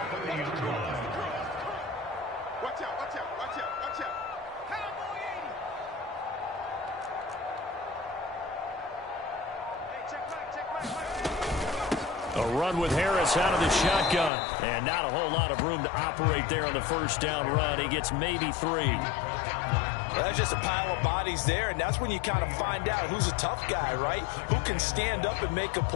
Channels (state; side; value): drops out; right; at 14.3 s